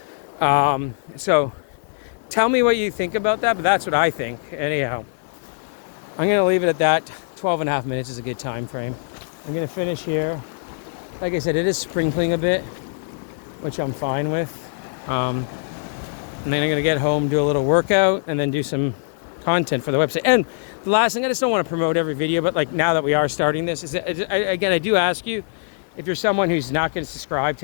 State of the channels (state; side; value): silent; right; digital silence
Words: So tell me what you think about that, but that's what I think. Anyhow, I'm going to leave it at that. 12 and a half minutes is a good time frame. I'm going to finish here. Like I said, it is sprinkling a bit, which I'm fine with. And then I'm going to get home, do a little workout, and then do some content for the website. And the last thing, I just don't want to promote every video, but like now that we are starting this, I do ask you, if you're someone who's not going to subscribe